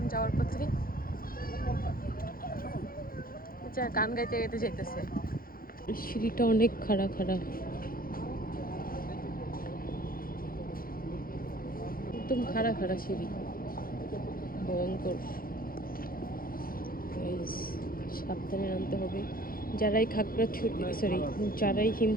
যাওয়ার পথে। গান গাইতে গাইতে যাইতেছে। সিঁড়িটা অনেক খাড়া খাড়া, একদম খাড়া খাড়া সিঁড়ি, ভয়ঙ্কর। সাবধানে নামতে হবে। যারাই যারাই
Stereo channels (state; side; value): late; right; 0.42 ms